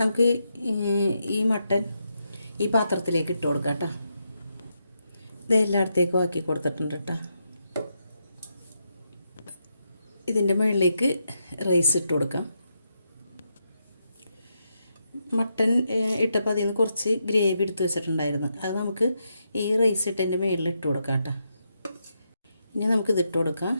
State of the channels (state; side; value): inverted; both; correlation -0.83